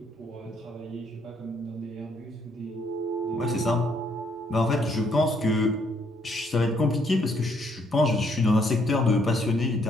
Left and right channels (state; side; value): normal; both; correlation 0.69